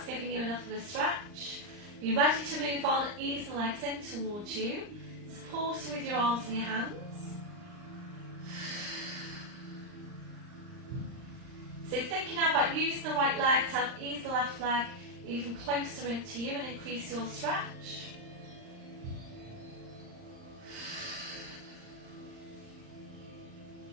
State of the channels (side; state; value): left; late; 39 ms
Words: giving you enough of a stretch. You're ready to move on, ease the legs in towards you. Supporting with your arms and your hands. So thinking now about using the right leg to help ease the left leg even closer into you and increase your stretch.